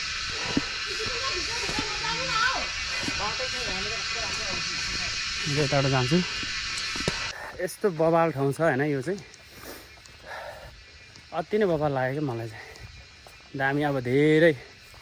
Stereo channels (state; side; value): identical; both; correlation 1.00